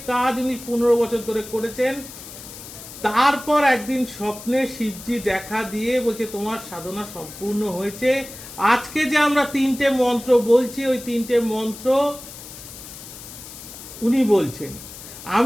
কাজ উনি 15 বছর ধরে করেছেন। তারপর একদিন স্বপ্নে শিবজি দেখা দিয়ে বলছে তোমার সাধনা সম্পূর্ণ হয়েছে। আজকে যে আমরা 3টে মন্ত্র বলছি, ওই 3টে মন্ত্র উনি বলছেন।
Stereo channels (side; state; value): left; noise; hiss, 14 dB below the sound